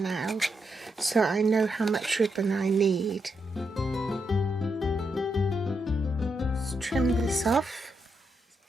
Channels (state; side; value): normal; both; correlation 0.82